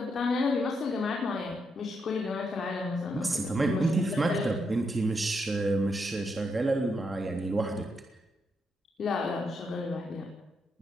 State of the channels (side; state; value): both; normal; correlation 0.80